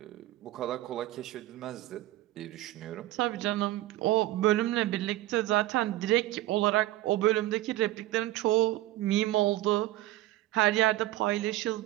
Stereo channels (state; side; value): quieter; left; 16.0 dB